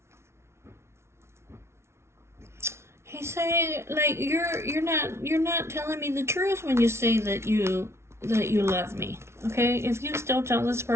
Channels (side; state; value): left; late; 0.13 ms